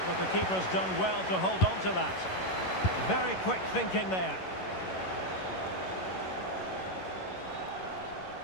but the keeper's done well to hold on to that. Very quick thinking there.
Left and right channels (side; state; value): right; late; 11 ms